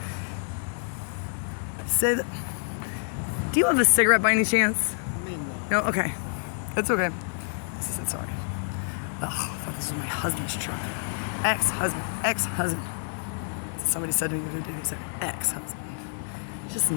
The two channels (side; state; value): right; silent; digital silence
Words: Say that. Do you have a cigarette by any chance? No? Okay. It's okay. She said sorry. Oh, I thought this was my husband's truck. Ex-husband. Somebody said to me the other day, he said ex-husband. He's just